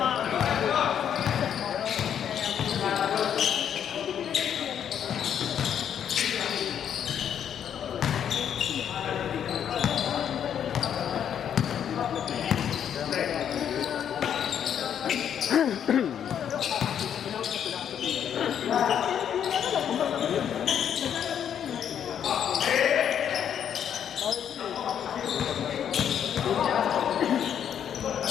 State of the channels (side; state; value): right; quieter; 9.0 dB